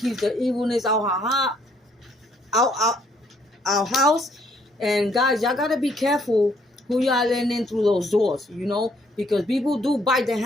the evilness out our house. And guys, y'all gotta be careful who y'all letting in through those doors, because people do bite the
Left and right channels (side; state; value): both; normal; correlation 0.67